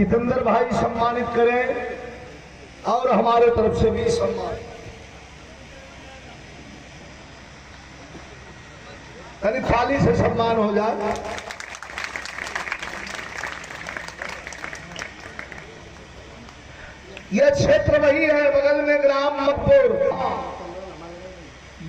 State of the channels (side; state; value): both; identical; correlation 1.00